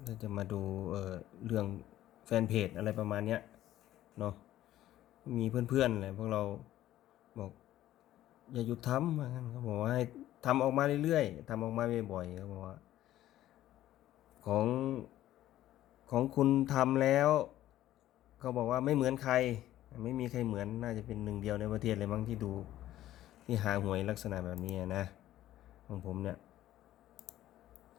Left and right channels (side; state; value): right; quieter; 13.7 dB